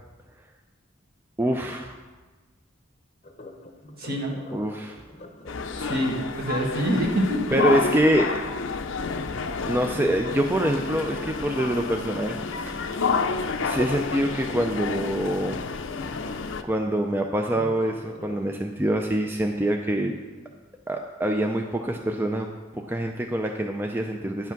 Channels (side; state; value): both; normal; correlation 0.61